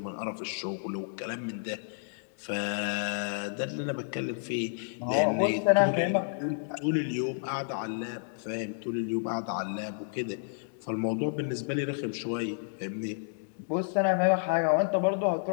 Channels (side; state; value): right; silent; digital silence